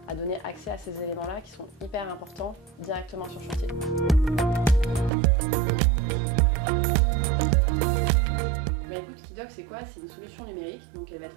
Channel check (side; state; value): left; drops out; at 5.1 s